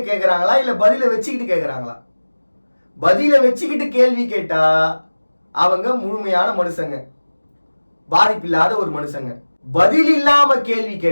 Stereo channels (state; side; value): inverted; both; correlation -1.00